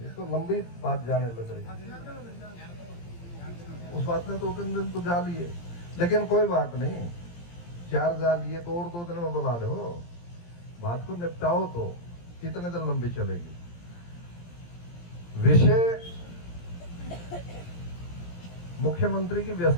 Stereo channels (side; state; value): right; late; 17 ms